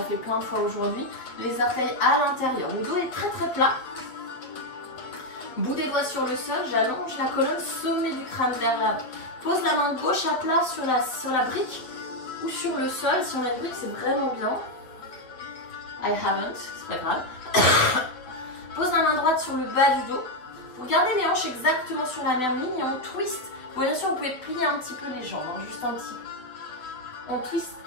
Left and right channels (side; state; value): right; late; 7.7 ms